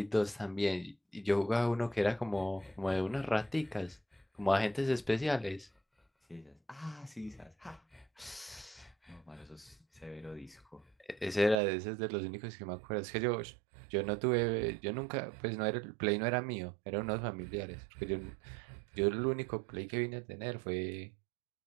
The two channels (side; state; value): left; drops out; at 11.6 s